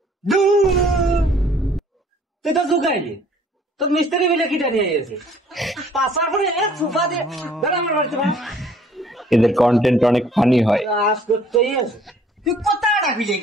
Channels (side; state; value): both; normal; correlation 0.57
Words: তুই তো ঢুকাইলি, তোর মিস্ত্রি মিলে কিটা নিয়ে গেছে। পাশার পরে সোফা দিয়ে আমার বাড়িতে এদের কন্টেন্ট অনেক ফানি হয়। কাজ করতেই আছে। তুই কোথায় রাখবি